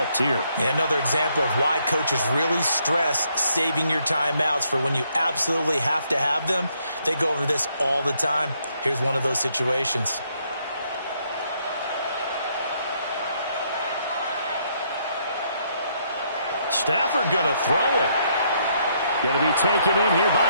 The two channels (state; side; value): inverted; both; correlation -0.72